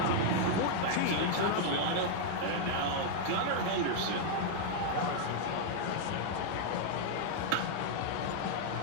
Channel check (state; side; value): different; both; correlation -0.01